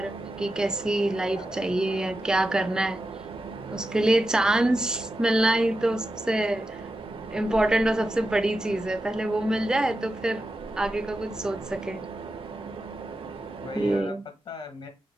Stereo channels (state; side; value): normal; both; correlation 0.89